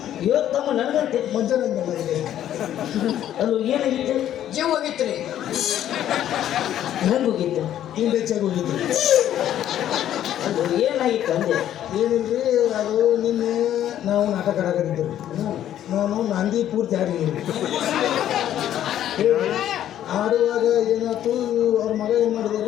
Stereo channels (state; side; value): quieter; right; 11.4 dB